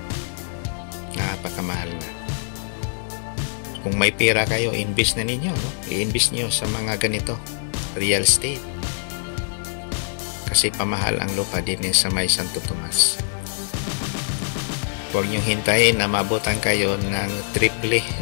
Napakamahal na. Kung may pera kayo, invest na ninyo, no? I-invest nyo sa mga ganito, real estate. Kasi pamahal ang lupa din sa may Santo Tomas. Huwag nyo hintayin na mabutan kayo ng triple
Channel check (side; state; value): right; silent; digital silence